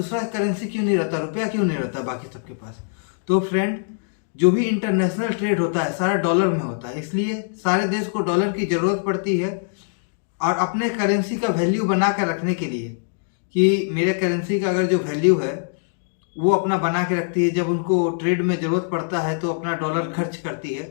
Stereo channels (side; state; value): right; silent; digital silence